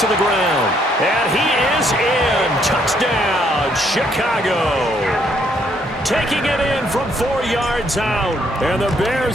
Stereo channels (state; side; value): normal; both; correlation 0.69